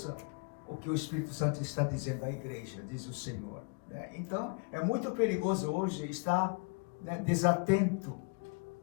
o que o Espírito Santo está dizendo à igreja, diz o Senhor, né? Então, é muito perigoso hoje estar, né, desatento,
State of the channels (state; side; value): quieter; right; 34.6 dB